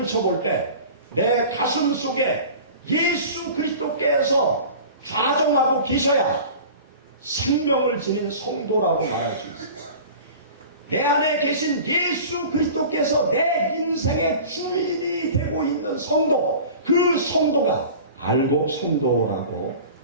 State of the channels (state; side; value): inverted; both; correlation -0.39